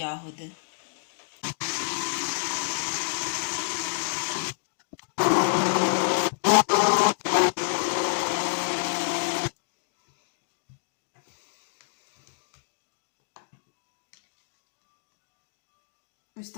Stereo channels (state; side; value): silent; right; digital silence